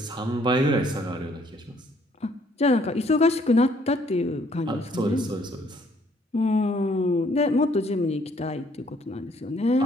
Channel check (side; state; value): both; normal; correlation 0.64